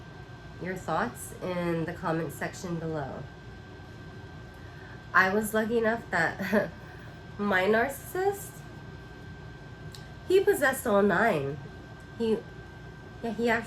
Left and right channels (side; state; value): both; identical; correlation 1.00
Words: your thoughts in the comment section below. I was lucky enough that my narcissist, he possessed all 9. He